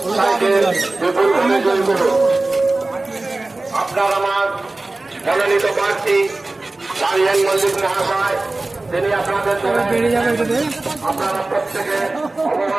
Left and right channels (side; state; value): left; quieter; 3.1 dB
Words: বিপুল ভোটে জয়ী করুন। আপনার আমার মনোনীত প্রার্থী সারিয়াল মল্লিক মহাশয়, তিনি আপনাদের আপনারা প্রত্যেকে